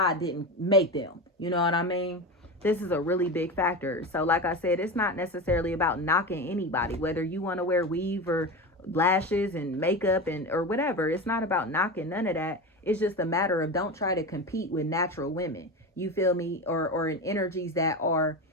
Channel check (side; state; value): both; normal; correlation 0.23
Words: didn't make them. You know what I mean? This is a really big factor. So like I said, it's not necessarily about knocking anybody, whether you want to wear weave or lashes and makeup and or whatever. It's not about knocking none of that. It's just a matter of, don't try to compete with natural women. You feel me? Or in energies that